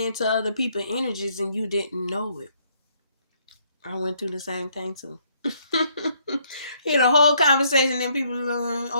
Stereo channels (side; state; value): both; inverted; correlation -0.68